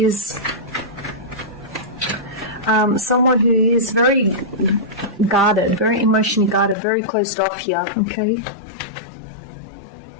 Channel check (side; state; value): right; drops out; at 6.8 s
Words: very guarded, very emotionally guarded, very closed off here. Okay.